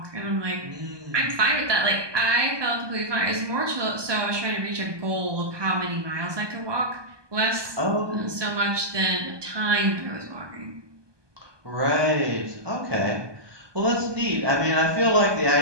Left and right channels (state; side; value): late; left; 1.2 ms